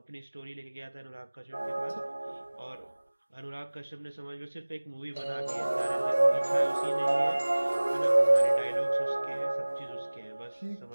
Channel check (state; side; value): inverted; both; correlation -1.00